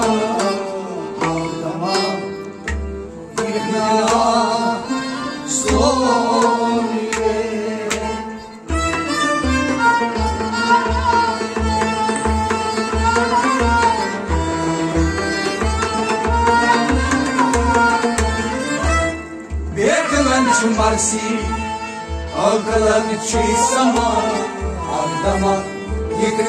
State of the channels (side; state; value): both; identical; correlation 1.00